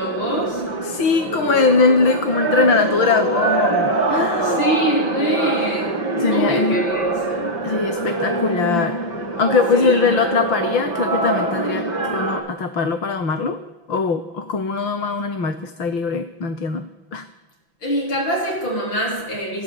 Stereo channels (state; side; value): late; right; 5.9 ms